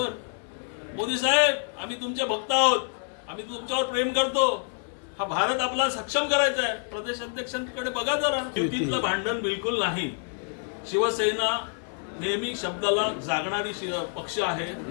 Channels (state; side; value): silent; right; 55 dB below the other